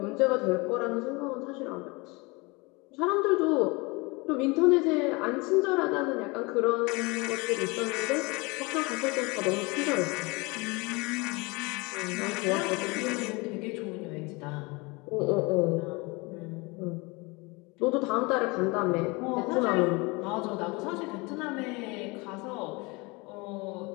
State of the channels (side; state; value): right; quieter; 26.3 dB